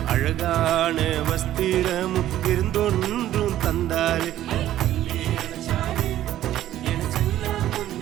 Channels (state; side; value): quieter; left; 13.0 dB